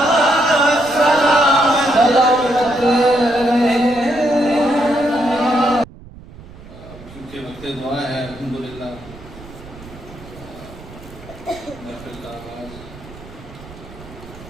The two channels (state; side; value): noise; right; rumble, 18 dB below the sound